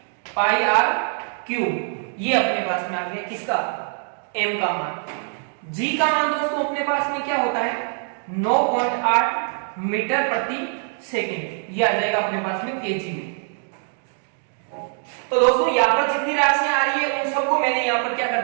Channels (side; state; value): left; silent; 56 dB below the other